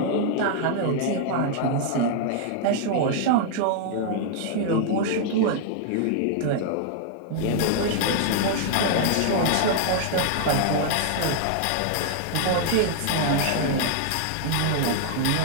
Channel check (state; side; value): different; both; correlation -0.01